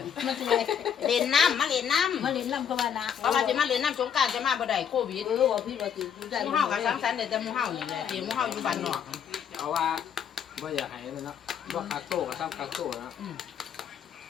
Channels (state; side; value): quieter; right; 8.1 dB